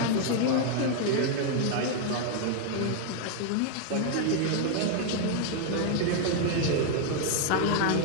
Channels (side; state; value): both; different; correlation 0.00